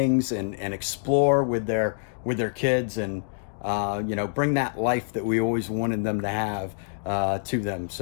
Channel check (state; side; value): silent; right; digital silence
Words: and explore with their kids, and you know, bring that life that we always wanted them to have to them.